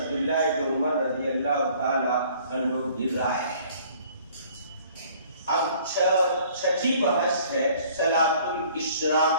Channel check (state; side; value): inverted; both; correlation -0.55